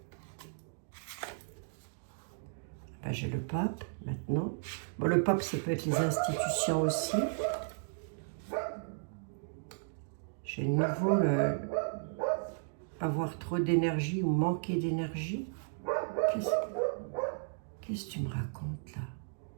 Ben, j'ai le pape maintenant. Bon, le pape, ça peut être les institutions aussi. J'ai de nouveau avoir trop d'énergie ou manquer d'énergie. Qu'est-ce que tu me racontes là?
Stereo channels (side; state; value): left; silent; digital silence